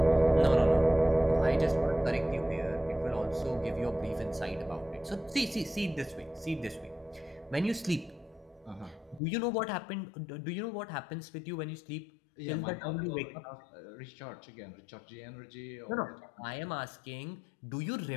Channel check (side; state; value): right; drops out; at 9.2 s